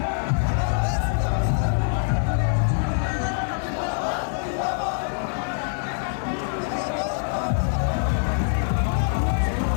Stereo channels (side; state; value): right; silent; 62 dB below the other